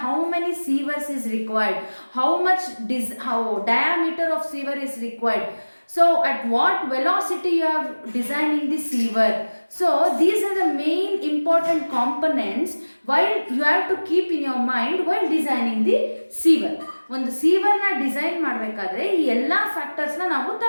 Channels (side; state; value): both; inverted; correlation -1.00